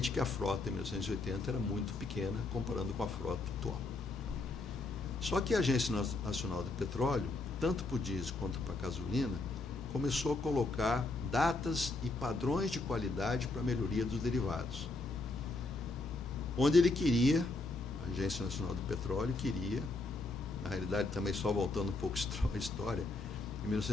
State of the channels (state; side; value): quieter; right; 3.2 dB